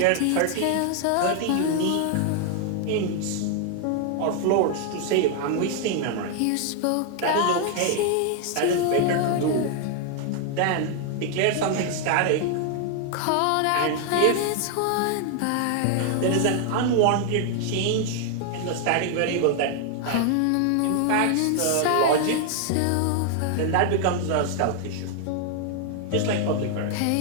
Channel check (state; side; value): different; both; correlation 0.00